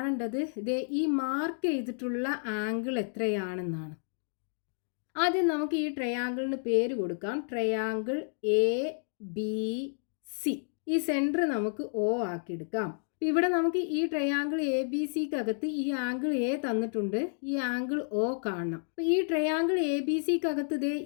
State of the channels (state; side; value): silent; right; digital silence